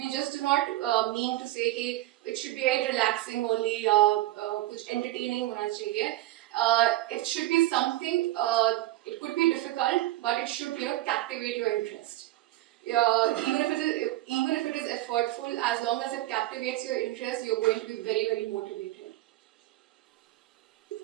just do not mean to say कि it should be very relaxing only, कुछ entertaining होना चाहिए. It should be something. It could be difficult, but it should captivate your interest. Even if it is effortful, as long as it captivates your interest, you're going to be very motivated.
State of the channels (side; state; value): left; quieter; 16.4 dB